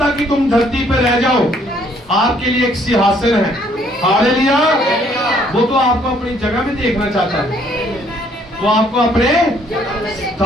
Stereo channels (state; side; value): normal; both; correlation 0.64